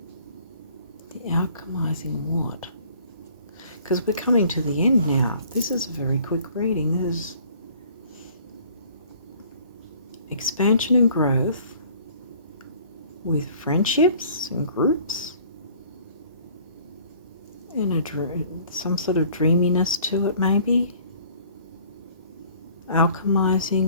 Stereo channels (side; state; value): both; inverted; correlation -0.54